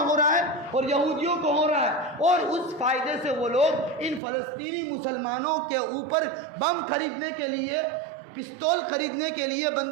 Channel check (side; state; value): left; drops out; at 4.2 s